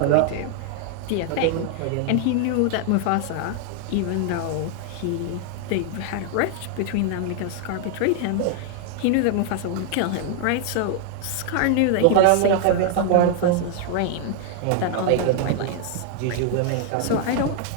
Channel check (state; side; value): different; both; correlation 0.00